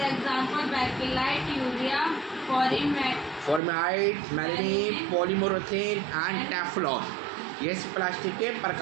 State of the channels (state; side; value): drops out; left; at 3.6 s